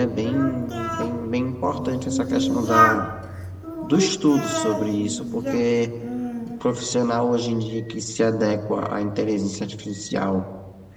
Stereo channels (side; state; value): both; identical; correlation 1.00